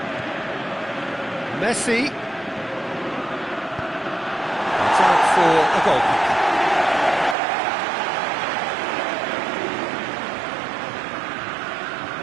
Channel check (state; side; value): drops out; left; at 7.4 s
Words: Messi. It's out for a goal kick.